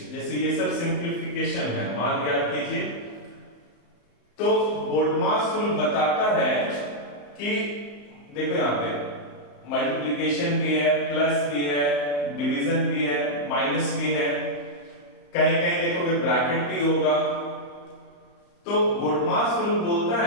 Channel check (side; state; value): right; late; 34 ms